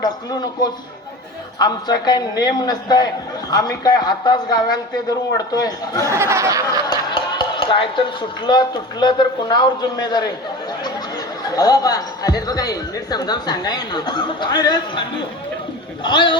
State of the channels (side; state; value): both; normal; correlation 0.34